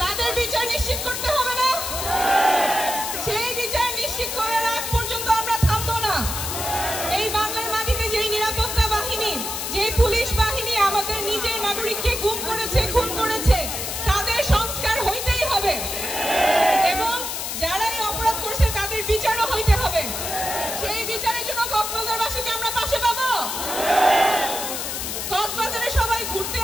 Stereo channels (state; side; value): noise; left; hiss, 4 dB below the sound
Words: তাদের বিচার নিশ্চিত করতে হবে না? সেই বিচার নিশ্চিত করার আগ পর্যন্ত আমরা থামবো না। এই বাংলার মাটিতে যেই নিরাপত্তা বাহিনী, যেই পুলিশ বাহিনী আমাদের নিজের নাগরিককে গুম করেছে, খুন করেছে, তাদের সংস্কার হইতেই হবে এবং যারাই অপরাধ করছে তাদের বিচারও হইতে হবে। সেই বিচারের জন্য কক্সবাজারবাসীকে আমরা পাশে পাবো। কক্সবাজারে সবাই ঘুরতে